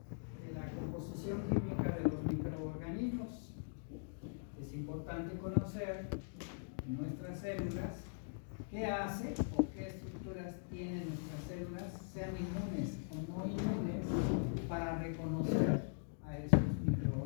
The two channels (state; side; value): silent; right; digital silence